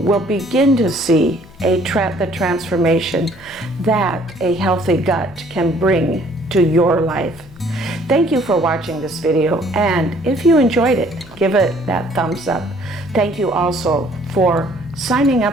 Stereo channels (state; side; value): noise; left; hum, 24 dB below the sound